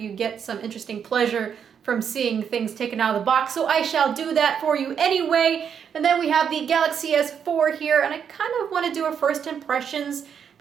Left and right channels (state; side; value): quieter; left; 7.6 dB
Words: get some interesting pleasure from seeing things taken out of the box, so I shall do that for you anyway. And then we have the Galaxy S4 here, and I kind of want to do a first impressions